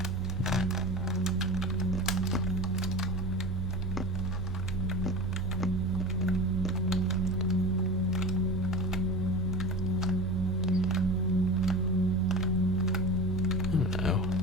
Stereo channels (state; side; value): normal; both; correlation 0.31